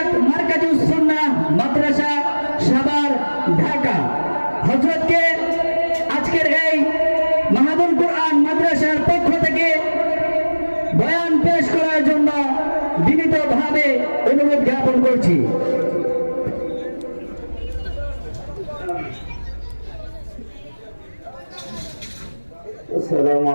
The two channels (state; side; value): inverted; both; correlation -1.00